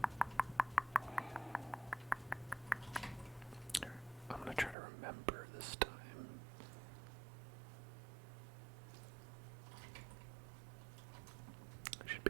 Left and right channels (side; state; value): left; drops out; at 4.8 s